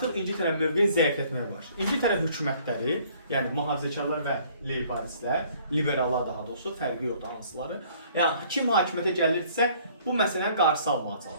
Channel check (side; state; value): both; inverted; correlation -0.58